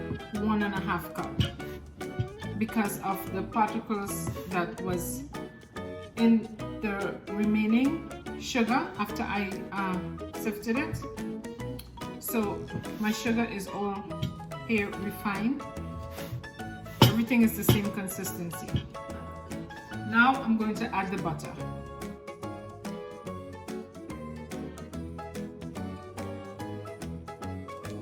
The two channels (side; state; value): both; identical; correlation 1.00